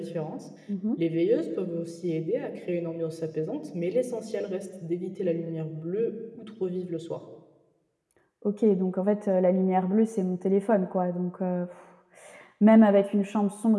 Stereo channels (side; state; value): both; identical; correlation 1.00